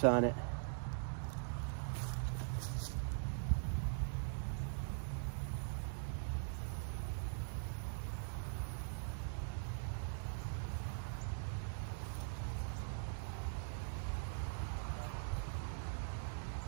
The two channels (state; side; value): silent; left; digital silence